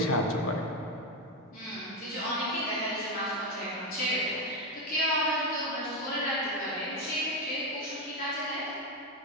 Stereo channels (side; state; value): both; normal; correlation 0.09